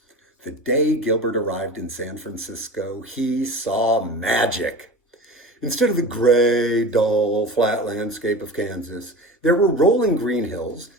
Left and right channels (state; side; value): normal; both; correlation 0.33